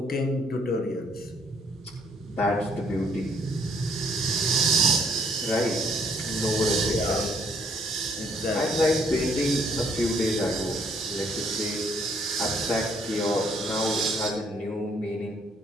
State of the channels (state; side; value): normal; both; correlation 0.67